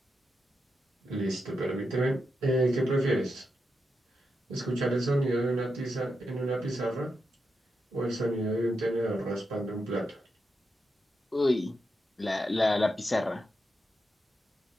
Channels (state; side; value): normal; both; correlation 0.86